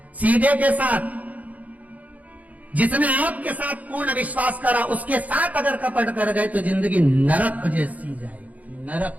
सीधे के साथ, जिसने आपके साथ पूर्ण विश्वास करा, उसके साथ अगर कपट कर गए तो जिंदगी नरक जैसी जाएगी,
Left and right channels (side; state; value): left; late; 0.074 ms